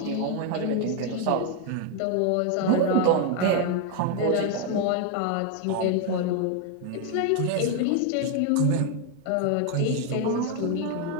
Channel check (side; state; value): both; different; correlation 0.01